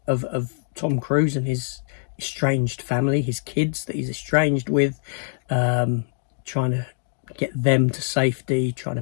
of Tom Cruise and his estranged family, his kids that he's estranged with, trying to get them to safety, trying to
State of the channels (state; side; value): silent; right; digital silence